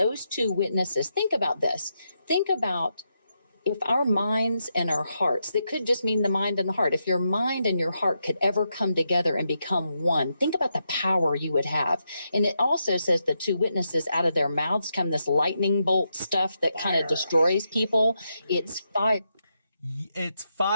two witnesses, think about this. Think about if our minds and our hearts, that could just mean the mind and the heart. If your mind and your heart could ever come together and become one, think about the power you would have. And it also says the two witnesses, out of their mouths come this lightning bolt stuff that kind of destroys people. It's fire. It's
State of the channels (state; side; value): inverted; both; correlation -0.84